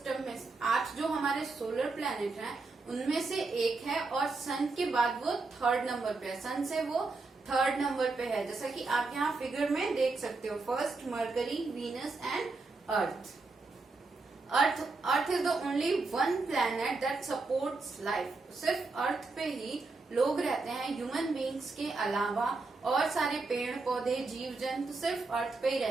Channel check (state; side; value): quieter; left; 3.7 dB